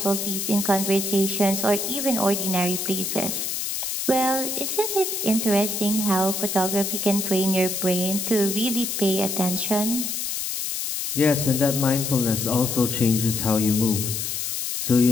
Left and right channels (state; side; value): noise; left; hiss, 3 dB below the sound